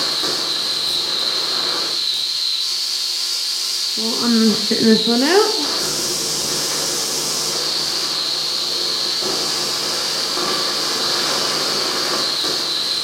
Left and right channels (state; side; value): identical; both; correlation 1.00